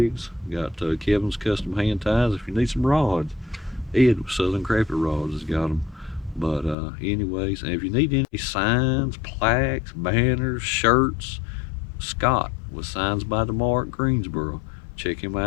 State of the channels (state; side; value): drops out; right; at 6.8 s